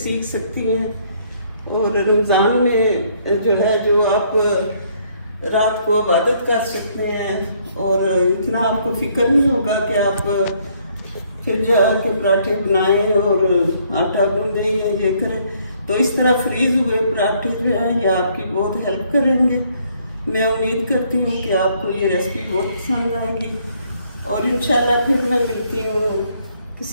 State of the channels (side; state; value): both; inverted; correlation -0.66